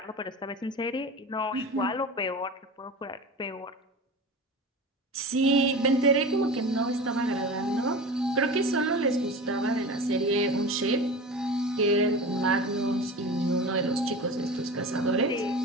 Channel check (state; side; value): normal; both; correlation 0.32